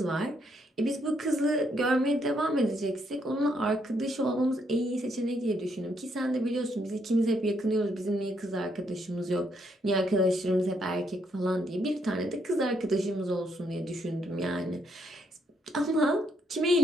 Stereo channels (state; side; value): normal; both; correlation 0.74